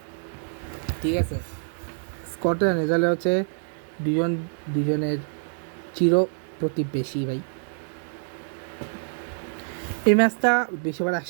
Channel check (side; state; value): left; silent; digital silence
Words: ঠিক আছে, স্কটল্যান্ড রেজাল্ট হচ্ছে দুজনের চির প্রতিবেশী ভাই। এই ম্যাচটা বেশিবার